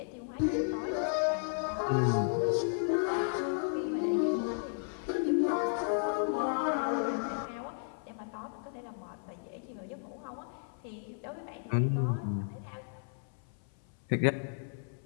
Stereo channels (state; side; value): silent; right; 55 dB below the other